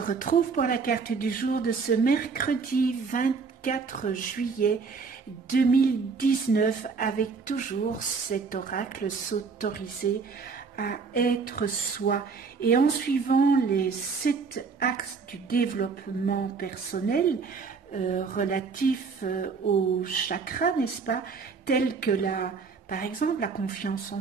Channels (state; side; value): quieter; left; 5.1 dB